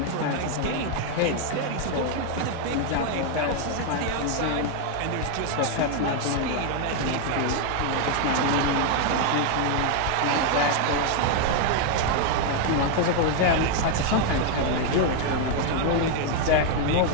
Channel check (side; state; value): both; different; correlation 0.01